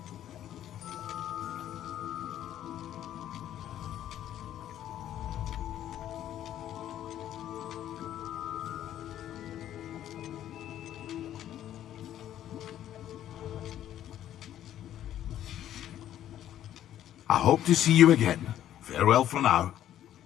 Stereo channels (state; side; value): quieter; right; 11.6 dB